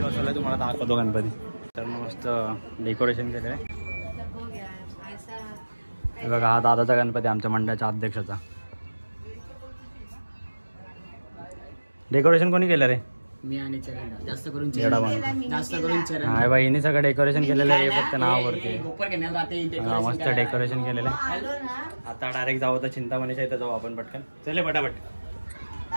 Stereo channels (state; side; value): inverted; both; correlation -1.00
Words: बसवला, तुम्हाला दाखवतो गणपती. तर मस्त डेकोरेशन केलं आहे. हे बघा हा दादाचा गणपती, आमच्या मंडळाच्या अध्यक्षाचा. डेकोरेशन कोणी केलं रे? मी आणि चरण. जास्त करून चरण. हा बाई, हिने सगळं डेकोरेशन केलेलं आहे, फक्त नावावरती. मस्त डेकोरेशन केलेलं आहे. आता डायरेक्ट जाऊ तर चिंतामणीच्या इथं जाऊ आपण पटकन. चले पटापट.